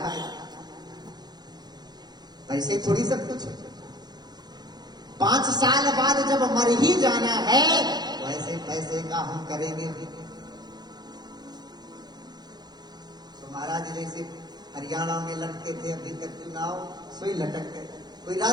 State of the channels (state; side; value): late; left; 0.20 ms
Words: पैसे थोड़ी सब कुछ है। 5 साल बाद जब मर ही जाना है वैसे पैसे का हम करेंगे भी। तो महाराज जैसे हरियाणा में लटके थे, अभी तक चुनाव सोई लटक गए, कोई